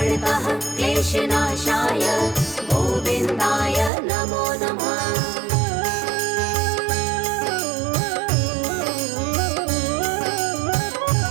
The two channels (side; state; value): left; drops out; at 3.9 s